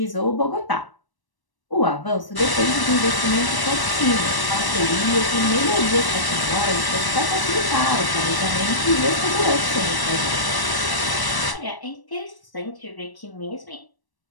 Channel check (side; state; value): right; late; 1.0 ms